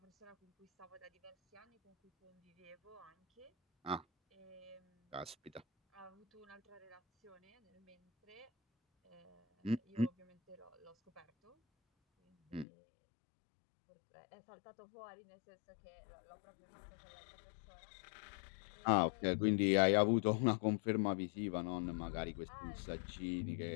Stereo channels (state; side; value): drops out; right; at 12.7 s